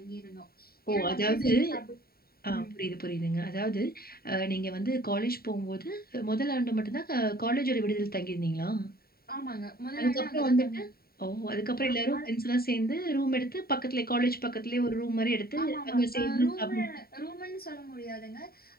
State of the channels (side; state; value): right; late; 0.44 ms